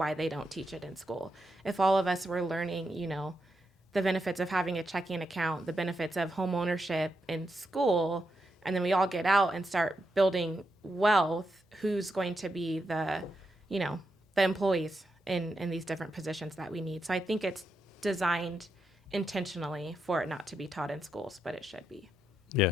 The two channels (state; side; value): normal; both; correlation 0.83